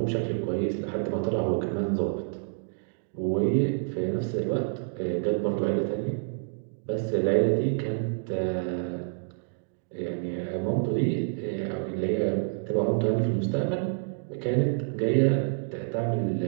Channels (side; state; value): left; silent; digital silence